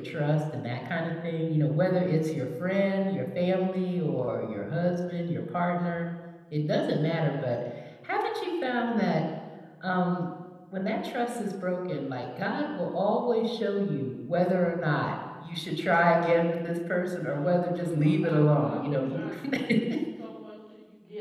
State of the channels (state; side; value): identical; both; correlation 1.00